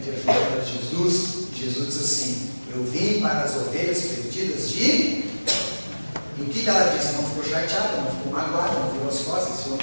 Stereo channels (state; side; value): inverted; both; correlation -1.00